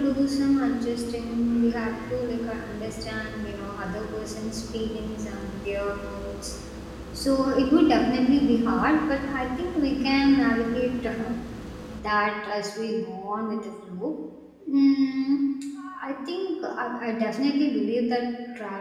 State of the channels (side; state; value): both; identical; correlation 1.00